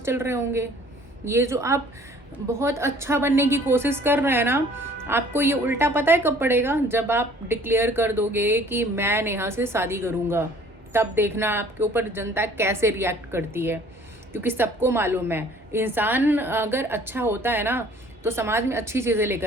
रहे होंगे। ये जो आप बहुत अच्छा बनने की कोशिश कर रहे हैं ना, आपको ये उल्टा पता है कब पड़ेगा? जब आप डिक्लेयर कर दोगे कि मैं नेहा से शादी करूँगा, तब देखना आपके ऊपर जनता कैसे रिएक्ट करती है। क्योंकि सबको मालूम है, इंसान अगर अच्छा होता है ना तो समाज में अच्छी चीज़ें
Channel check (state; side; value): normal; both; correlation 0.53